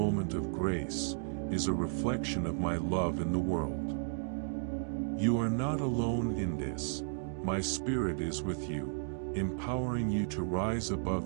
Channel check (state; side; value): silent; left; digital silence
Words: of grace, is a reflection of my love in the world. You are not alone in this. My Spirit is with you, empowering you to rise